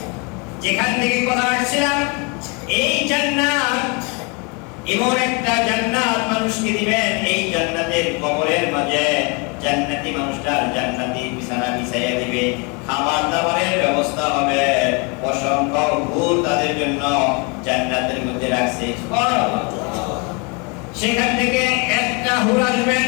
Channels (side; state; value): right; quieter; 31.9 dB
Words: যেখান থেকে কথা আসছিলাম, এই জান্নাত এমন একটা জান্নাত মানুষকে দিবেন, এই জান্নাতের কবরের মাঝে জান্নাতি মানুষটার জান্নাতি বিছানা বিছাইয়া দিবে, খাবার দাবারের ব্যবস্থা হবে, অসংখ্য হুর তাদের জন্য জান্নাতের মধ্যে রাখছে। সেখান থেকে একটা হুর আসবেন